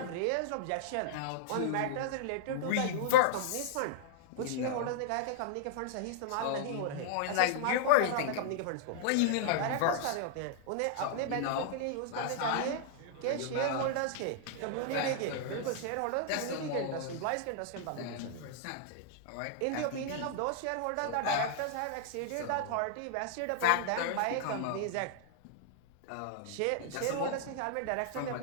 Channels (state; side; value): different; both; correlation -0.01